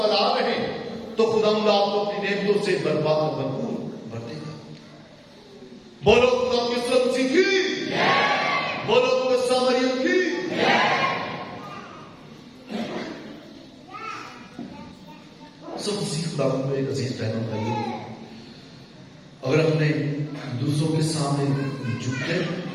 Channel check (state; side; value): identical; both; correlation 1.00